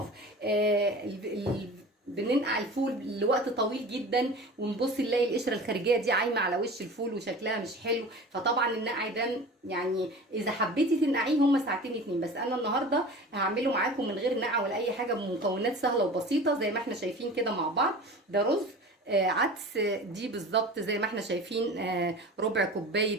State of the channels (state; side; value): normal; both; correlation 0.37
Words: بننقع الفول لوقت طويل جدا ونبص نلاقي القشره الخارجيه دي عايمه على وش الفول وشكلها مش حلو. فطبعا النقع ده يعني اذا حبيتي تنقعيه هم ساعتين 2، بس انا النهارده هعمله معاكم من غير نقع ولا اي حاجه، بمكونات سهله وبسيطه زي ما احنا شايفين كده مع بعض. ده رز عدس، دي بالظبط زي ما احنا شايفين ربع